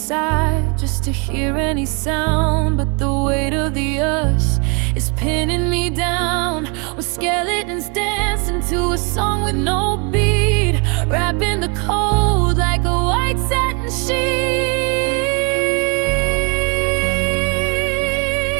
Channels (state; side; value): quieter; left; 33.3 dB